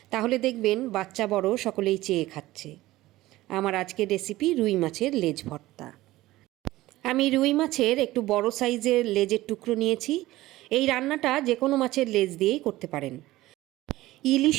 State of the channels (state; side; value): quieter; left; 17.1 dB